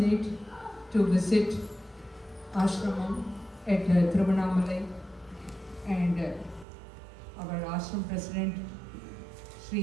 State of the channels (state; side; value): drops out; left; at 6.7 s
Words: to visit ashramam at Tiruvannamalai, and our ashram president